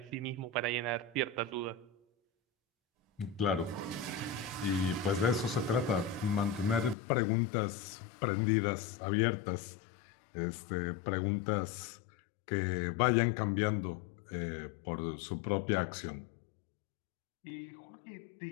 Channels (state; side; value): drops out; right; at 7.0 s